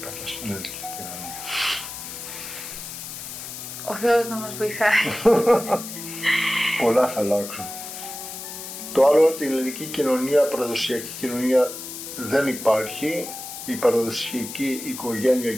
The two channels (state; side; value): noise; left; hiss, 9 dB below the sound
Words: στην ελληνική κοινωνία. Ο Θεός να μας βοηθάει. Πολλά θα αλλάξουν. Το άλλο ότι η ελληνική κοινωνία, παραδοσιακή κοινωνία δεν υπάρχει. Η παραδοσιακή οικογένεια